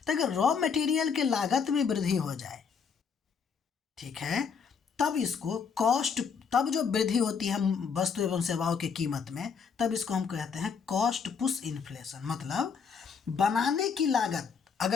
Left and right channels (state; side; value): quieter; right; 6.1 dB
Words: तो अगर रॉ मटेरियल के लागत में वृद्धि हो जाए, ठीक है, तब इसको कॉस्ट, तब जो वृद्धि होती है वस्तु एवं सेवाओं की कीमत में, तब इसको हम कहते हैं कॉस्ट पुश इन्फ्लेशन। मतलब बनाने की लागत